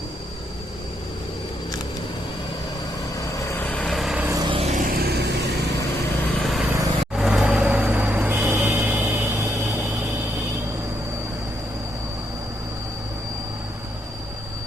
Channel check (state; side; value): normal; both; correlation 0.77